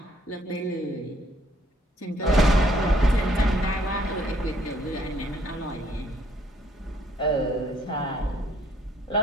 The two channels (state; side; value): normal; both; correlation 0.66